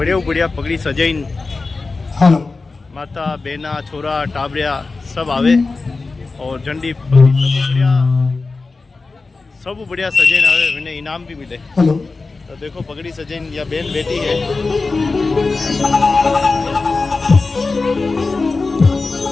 बढ़िया पगड़ी सजाइन हेलो माता बेना छोरा टाबरिया सब आवे और झंडी पगड़ी सब बढ़िया सजाइन आवे, उन्हें इनाम भी मिले। हेलो तो देखो पगड़ी सजाइन या बेन बेटी है।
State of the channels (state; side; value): quieter; right; 3.9 dB